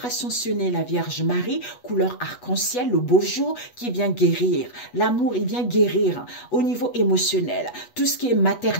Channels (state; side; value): late; right; 8.2 ms